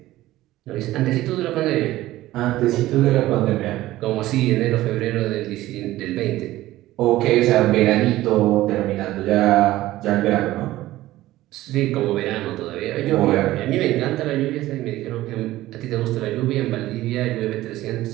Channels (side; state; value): left; quieter; 16.0 dB